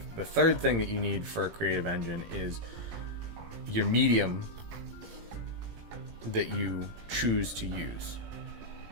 the third thing that you need for a creative engine is your medium that you choose to use.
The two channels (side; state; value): left; late; 18 ms